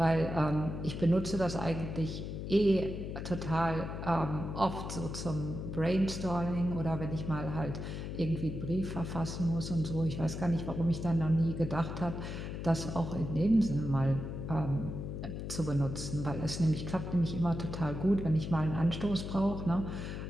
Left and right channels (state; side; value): noise; left; hum, 6 dB below the sound